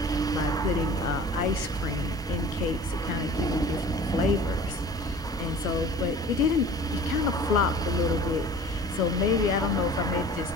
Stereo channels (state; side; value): normal; both; correlation 0.43